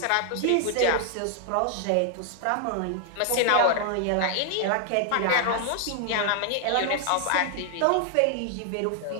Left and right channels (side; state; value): both; different; correlation 0.00